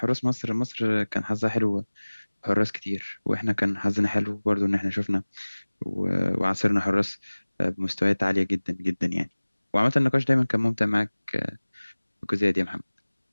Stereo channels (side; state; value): both; inverted; correlation -1.00